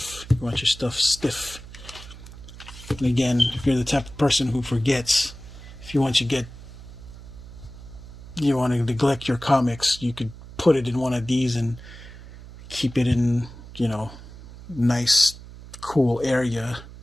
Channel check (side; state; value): right; noise; hum, 16 dB below the sound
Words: You want your stuff stiff. And again, if you're the type of person who forgets, if you want to neglect your comics, you could put it in one of these and keep it in, nice, cool area,